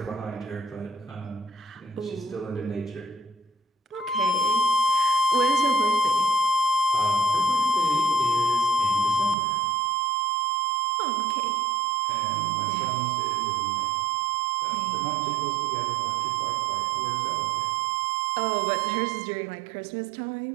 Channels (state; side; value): drops out; left; at 9.3 s